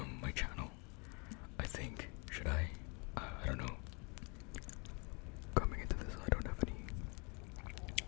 my channel. I think, should I? I don't know. Coming into this, I don't have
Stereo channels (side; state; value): right; quieter; 32.5 dB